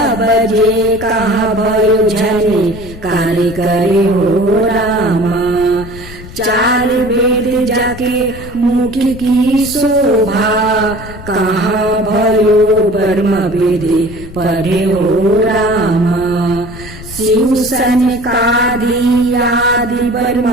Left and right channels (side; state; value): left; noise; rumble, 14 dB below the sound